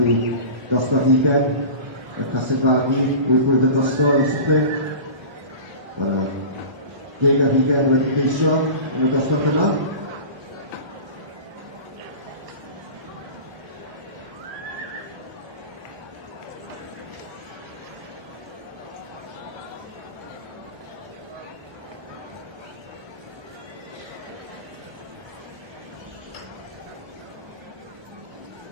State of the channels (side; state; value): left; late; 1.2 ms